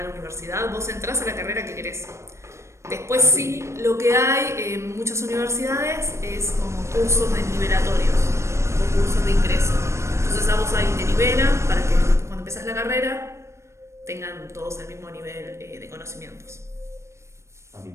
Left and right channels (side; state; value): left; late; 0.13 ms